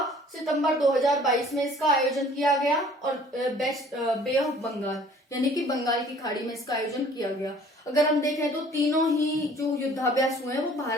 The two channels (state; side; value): normal; both; correlation 0.53